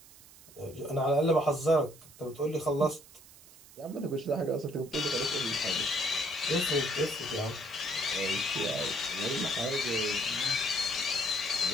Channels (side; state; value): right; noise; hiss, 22 dB below the sound